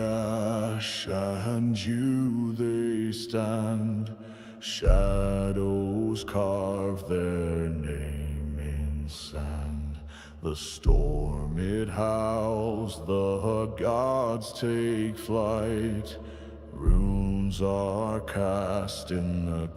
and dew they stand, shadows carve their name in sand. The storm it howls, the gods take flight, runes are cast in the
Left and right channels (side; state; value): both; identical; correlation 1.00